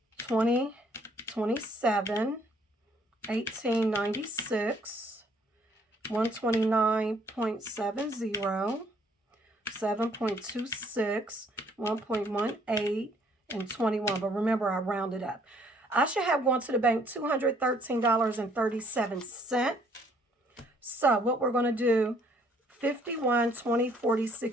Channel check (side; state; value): both; normal; correlation 0.63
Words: 20, 27, 1896, 129.70, 7.26, 1.18, and 21. But remember, I rounded up. I should have gone to the bank $213.37. So what we're going to do, 51, 20, 40,